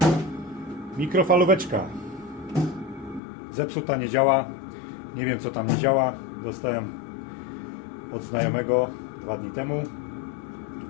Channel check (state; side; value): drops out; right; at 3.2 s